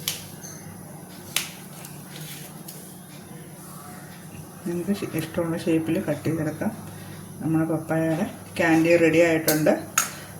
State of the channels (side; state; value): both; identical; correlation 1.00